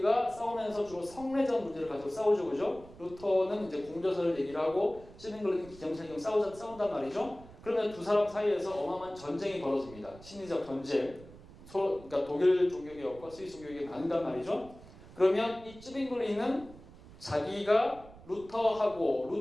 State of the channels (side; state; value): right; noise; rumble, 19 dB below the sound